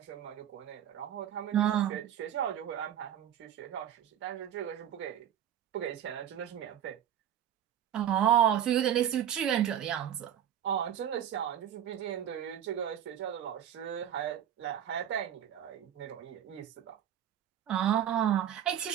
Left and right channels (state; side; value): quieter; left; 10.0 dB